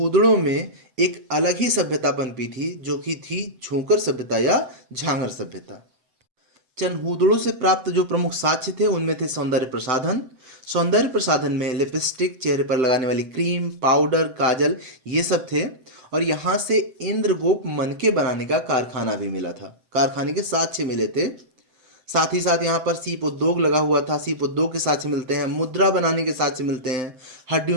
में एक अलग ही सभ्यता पनपी थी, जो कि थी झूंकर सभ्यता या झांगर सभ्यता। चनहूदड़ों से प्राप्त जो प्रमुख साक्ष्य थे उनमें थे सौंदर्य प्रसाधन। सौंदर्य प्रसाधन में लिपस्टिक, चेहरे पर लगाने वाली क्रीम, पाउडर, काजल, ये सब थे। और यहाँ से इंद्रगोप मनके बनाने का कारखाना भी मिला था, कारखाने के साक्ष्य मिले थे। साथ ही साथ यहाँ पर सीप उद्योग लगा हुआ था, सीप उद्योग के साक्ष्य मिलते हैं। मुद्रा बनाने के साक्ष्य मिलते हैं।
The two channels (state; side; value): late; left; 7.8 ms